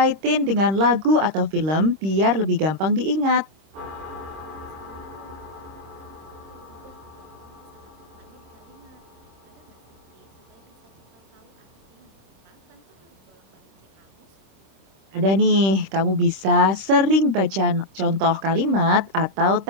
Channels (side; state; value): left; late; 26 ms